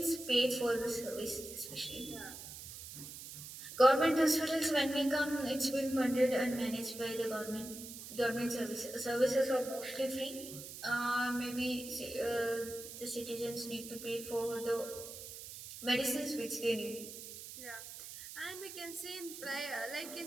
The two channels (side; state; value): right; noise; hiss, 11 dB below the sound